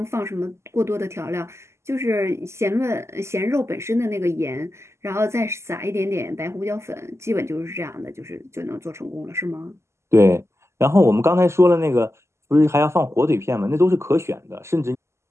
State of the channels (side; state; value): left; late; 0.13 ms